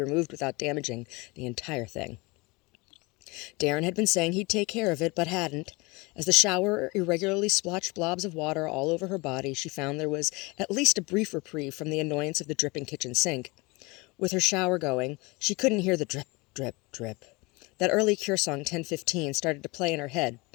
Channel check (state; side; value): quieter; right; 25.3 dB